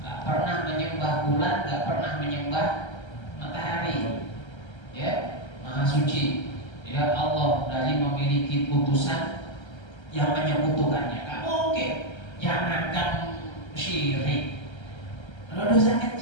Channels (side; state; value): right; late; 1.3 ms